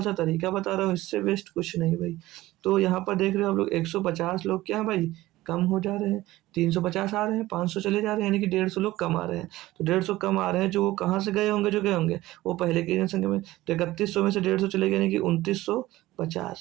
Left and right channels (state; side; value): quieter; left; 17.2 dB